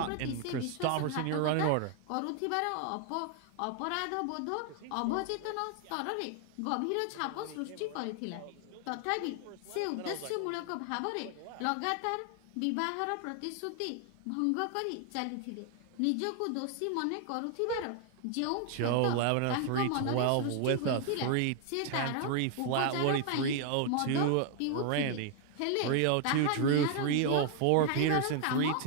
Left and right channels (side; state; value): both; different; correlation 0.00